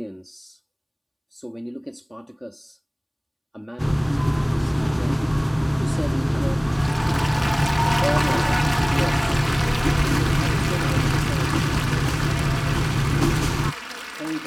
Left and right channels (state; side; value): identical; both; correlation 1.00